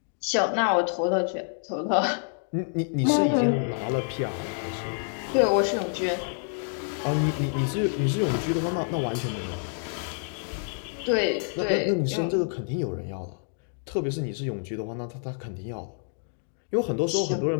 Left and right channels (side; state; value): right; silent; 60 dB below the other